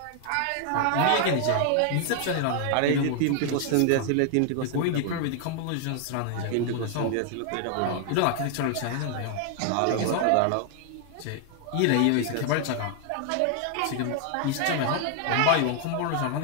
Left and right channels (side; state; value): both; different; correlation 0.00